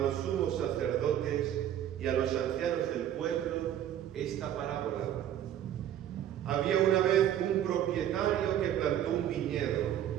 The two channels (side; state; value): left; quieter; 10.9 dB